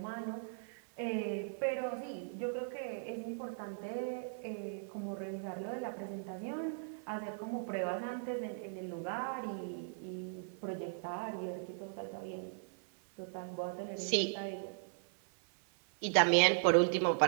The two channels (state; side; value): silent; left; 52 dB below the other